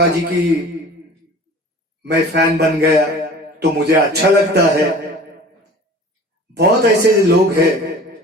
जी की मैं फैन बन गया, तो मुझे अच्छा लगता है। बहुत ऐसे लोग हैं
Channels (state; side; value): normal; both; correlation 0.43